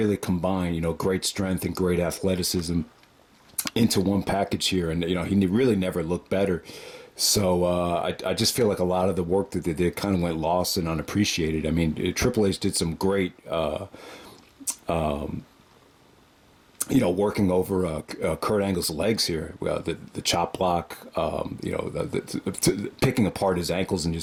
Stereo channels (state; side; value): identical; both; correlation 1.00